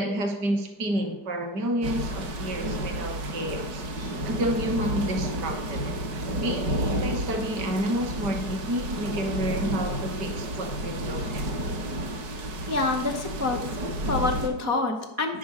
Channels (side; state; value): left; late; 4.7 ms